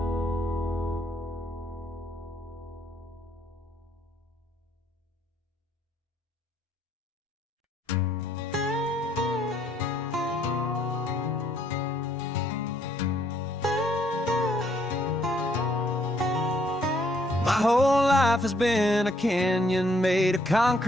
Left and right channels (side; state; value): both; normal; correlation 0.68